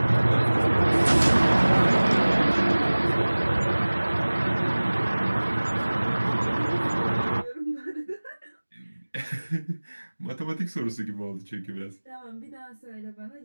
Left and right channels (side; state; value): both; inverted; correlation -1.00